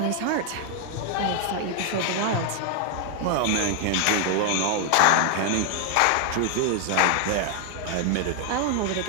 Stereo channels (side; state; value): both; different; correlation 0.00